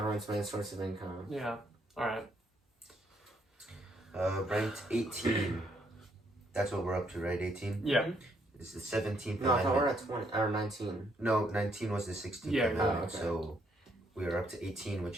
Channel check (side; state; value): both; normal; correlation 0.72